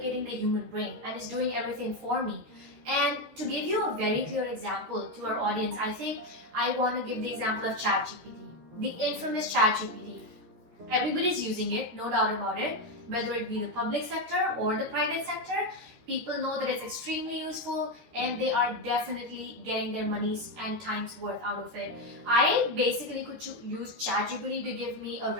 the human brain and it's doing everything for me. And to give you a very clear example to our audience, I think I want to give the example of ChatGPT, the infamous ChatGPT. Everybody's using it, no doubt about it, whether it be the public sector or the private sector. People know that it's extremely useful and they are definitely getting their money's and time's worth out of it. I basically could use ChatGPT to give me a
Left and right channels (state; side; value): late; left; 13 ms